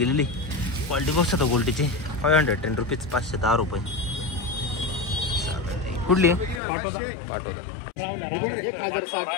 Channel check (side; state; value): right; drops out; at 6.6 s